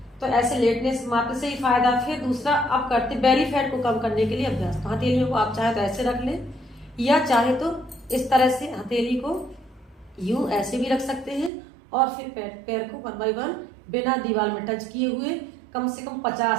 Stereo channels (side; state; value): left; drops out; at 11.5 s